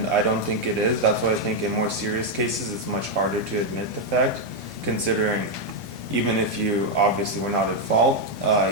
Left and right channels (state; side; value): normal; both; correlation 0.02